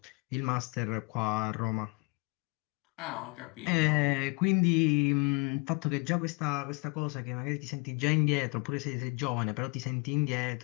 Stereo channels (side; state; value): right; quieter; 30.6 dB